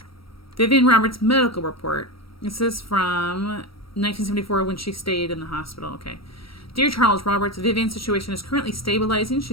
Vivian Roberts' medical report. This is from 1974 when she stayed in the hospital. Okay. Dear Charles Roberts, Vivian's situation is currently stabilizing.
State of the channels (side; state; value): right; late; 0.75 ms